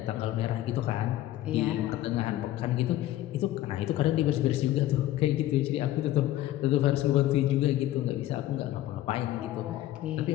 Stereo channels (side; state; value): right; quieter; 14.4 dB